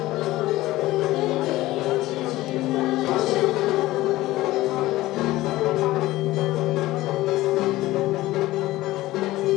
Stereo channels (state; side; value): quieter; right; 17.3 dB